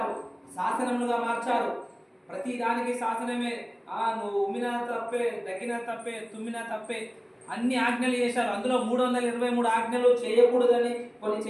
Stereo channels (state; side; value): identical; both; correlation 1.00